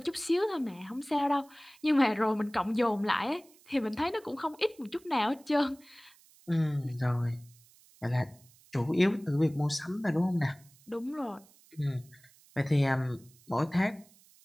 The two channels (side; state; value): right; noise; hiss, 27 dB below the sound